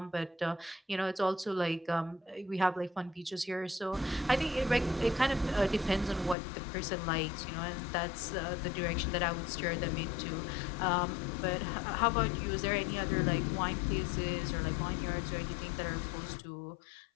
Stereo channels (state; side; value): drops out; right; at 6.4 s